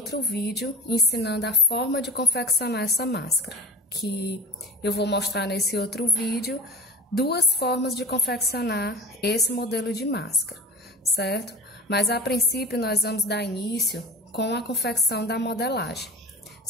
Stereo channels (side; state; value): both; normal; correlation 0.34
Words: vídeo ensinando a forma de confeccionar essa máscara, que eu vou mostrar nesse outro vídeo duas formas de confeccionar esse modelo de máscara, certo? Mas a princípio nós vamos dar início com a confecção da modelagem,